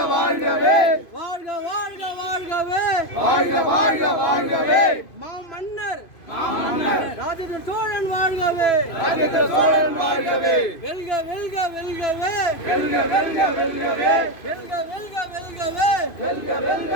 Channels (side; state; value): right; late; 2.5 ms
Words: வாழ்கவே வாழ்க வாழ்க வாழ்கவே வாழ்க வாழ்க வாழ்கவே மாமன்னர் மாமன்னர் ராஜேந்திர சோழன் வாழ்கவே ராஜேந்திர சோழன் வாழ்கவே வெல்க வெல்க வெல்கவே வெல்க வெல்க வெல்கவே வெல்க வெல்க வெல்கவே வெல்க